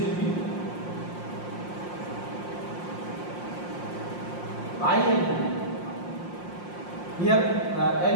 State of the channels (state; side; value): late; right; 5.7 ms